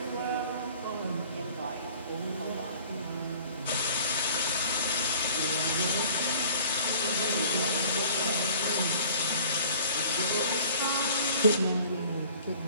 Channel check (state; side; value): inverted; both; correlation -0.49